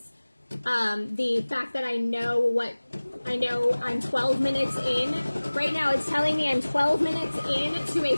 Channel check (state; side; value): inverted; both; correlation -1.00